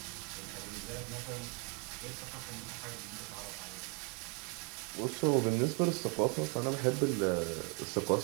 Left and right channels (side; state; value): left; quieter; 33.9 dB